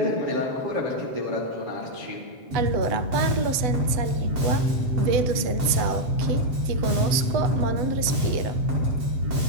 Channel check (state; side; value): late; left; 8.0 ms